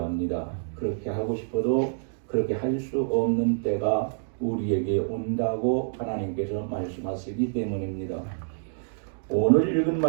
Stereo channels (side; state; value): left; silent; digital silence